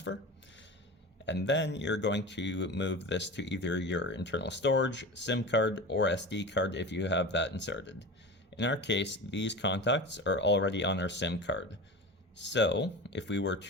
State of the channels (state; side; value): normal; both; correlation 0.30